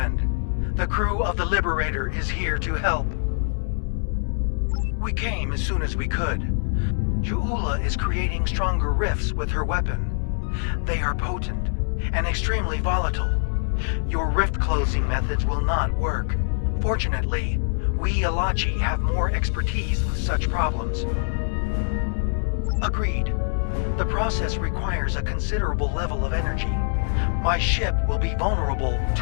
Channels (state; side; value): silent; right; 62 dB below the other